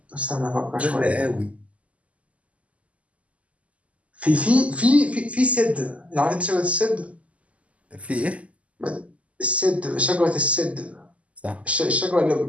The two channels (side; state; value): left; late; 0.066 ms